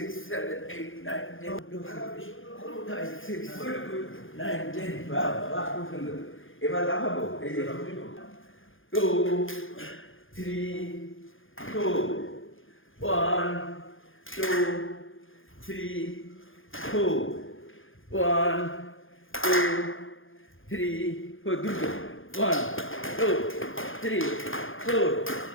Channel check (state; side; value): late; right; 0.58 ms